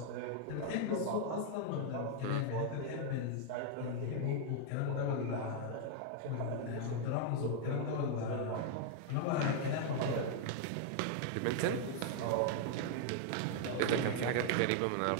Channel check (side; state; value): both; different; correlation 0.00